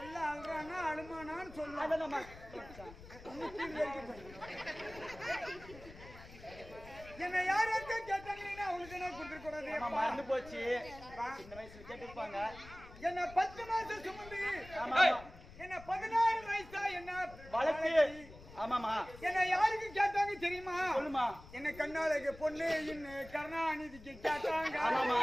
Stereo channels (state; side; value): noise; left; rumble, 17 dB below the sound